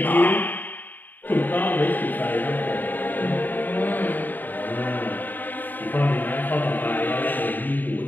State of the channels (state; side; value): late; right; 0.089 ms